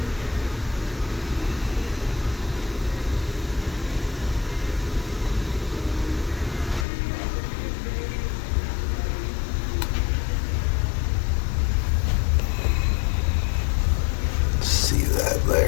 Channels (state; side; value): drops out; right; at 6.9 s